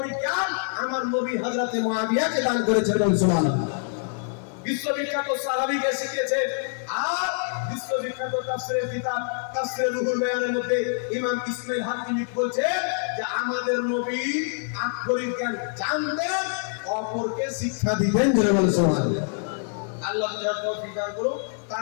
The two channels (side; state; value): right; silent; digital silence